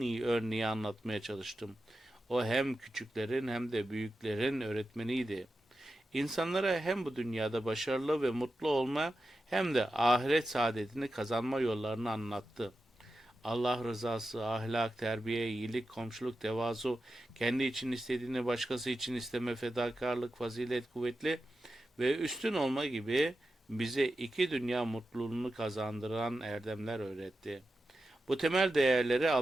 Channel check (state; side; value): normal; both; correlation 0.91